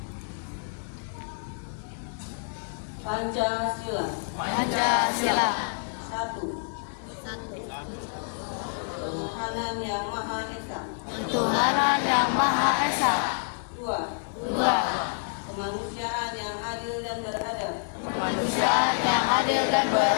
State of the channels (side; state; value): right; silent; digital silence